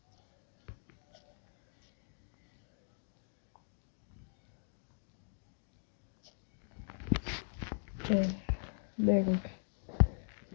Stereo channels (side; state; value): right; silent; digital silence